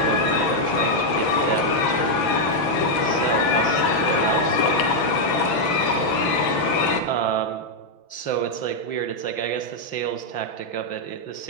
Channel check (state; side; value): late; right; 6.0 ms